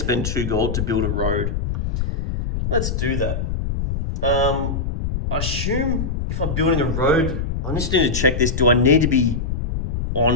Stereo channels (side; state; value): left; noise; rumble, 2 dB below the sound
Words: 2 gold to build a road. Let's do that. I assume if I'm building a road, I just need to check this. Do I need to be